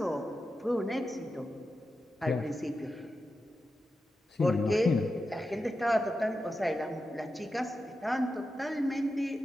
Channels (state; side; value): normal; both; correlation 0.90